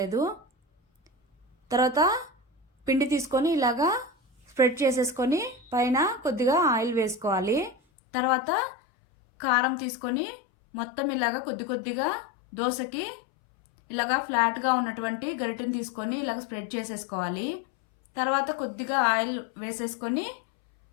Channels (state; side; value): drops out; right; at 7.8 s